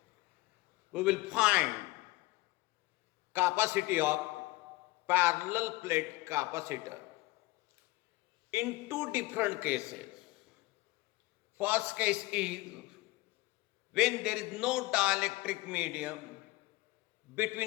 we will find capacity of parallel plate capacitor in two different cases. First case is when there is no dielectric medium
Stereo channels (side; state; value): right; quieter; 20.7 dB